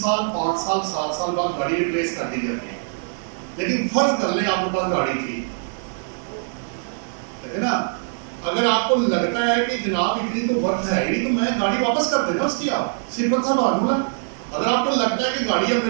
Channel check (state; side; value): silent; left; 62 dB below the other